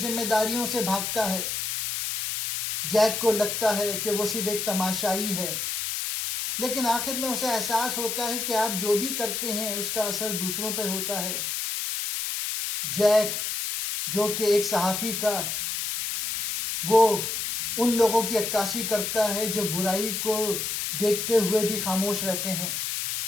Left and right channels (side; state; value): left; noise; hiss, 2 dB below the sound